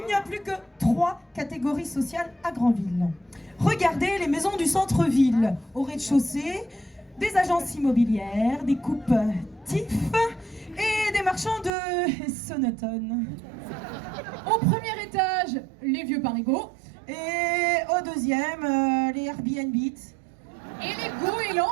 plus que 3 catégories sociales à Grandville. Regardez les maisons du centre-ville. Au rez-de-chaussée, des agences immobilières, des coupes TIF et des marchands de sonotone. Au premier étage, les vieux parigots. Et au deuxième, les Airbnb. Et les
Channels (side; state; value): left; drops out; at 11.7 s